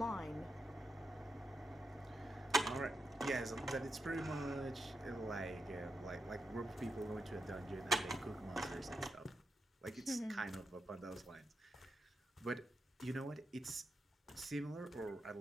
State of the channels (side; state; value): both; normal; correlation 0.85